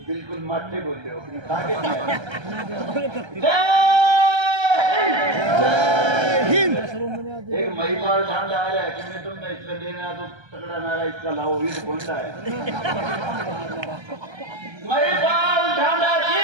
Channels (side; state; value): left; late; 1.3 ms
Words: बिल्कुल माथे बोल रहे हो आगे एक महिपाल ठांड आ रहा है कि मैं तुमने इसका देना तो तगड़ा नारा इसका लाओ ये तो बोलता है महिपाल ठांडा जी